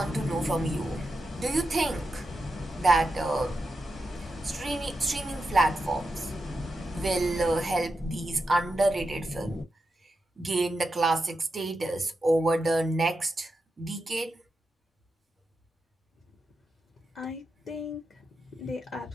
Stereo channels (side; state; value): both; normal; correlation 0.88